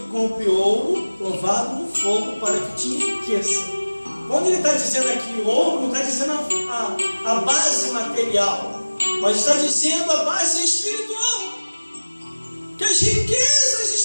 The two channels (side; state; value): both; inverted; correlation -1.00